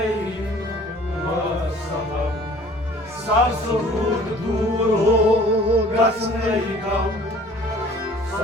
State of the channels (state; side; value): normal; both; correlation 0.50